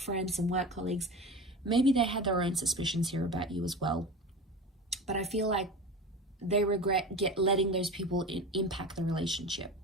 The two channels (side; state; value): both; normal; correlation 0.31